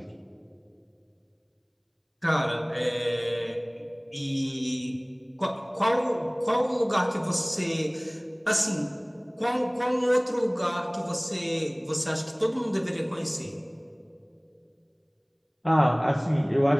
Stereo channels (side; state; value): both; identical; correlation 1.00